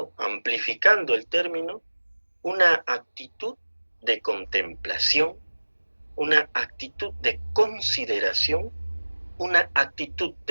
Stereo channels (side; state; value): both; inverted; correlation -1.00